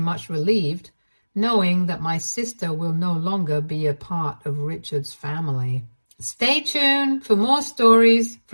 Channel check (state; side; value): inverted; both; correlation -1.00